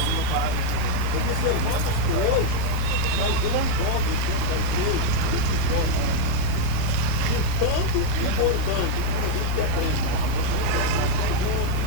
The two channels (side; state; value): both; different; correlation 0.01